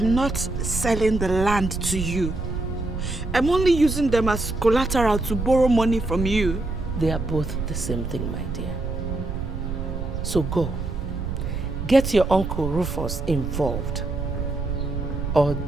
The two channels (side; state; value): right; noise; rumble, 5 dB below the sound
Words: not selling the land to you. I'm only using them as collateral to borrow money from you. They are both the same thing, my dear. So go. Get your Uncle Rufus involved. Or